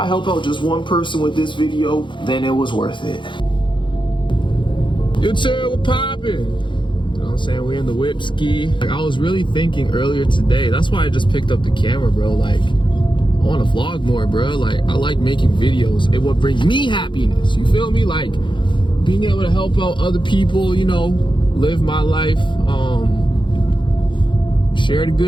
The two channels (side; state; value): right; late; 0.23 ms